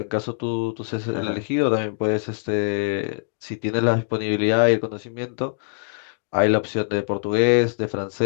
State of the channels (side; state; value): right; silent; digital silence